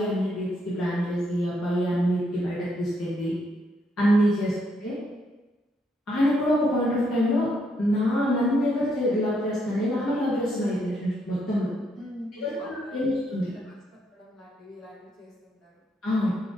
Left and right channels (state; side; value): normal; both; correlation 0.75